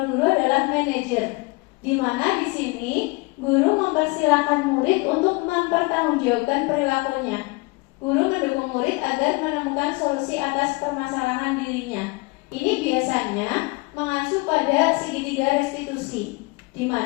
guru adalah manajer, di mana di sini guru mempersilahkan murid untuk mempertanggungjawabkan perilakunya. Guru mendukung murid agar menemukan solusi atas permasalahan dirinya. Ini biasanya mengacu pada segitiga restitusi, di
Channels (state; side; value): quieter; right; 26.3 dB